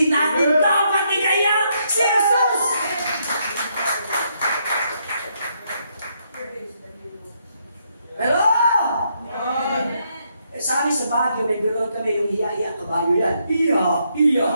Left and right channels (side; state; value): both; inverted; correlation -0.75